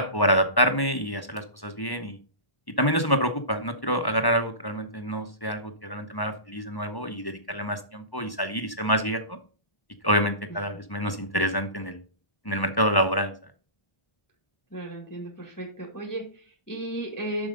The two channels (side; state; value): right; late; 1.1 ms